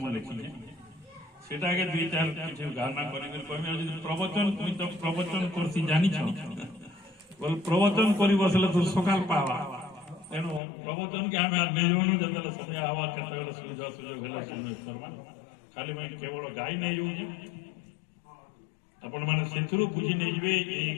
लिखी सेटाके दुई चार किसी गाना कर प्रवचन तुम तो प्रवचन करसी जानी बोल प्रवचन कर बसले तो सकाल पावा तेणु प्रवचन के आम निजमन जो समय आवा केत सुविधा सुजोग है सुनिए करमा खाली मैं केवल गाई नहीं जाऊँ आपण मैंने से बुझी नहीं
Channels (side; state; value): right; drops out; at 10.6 s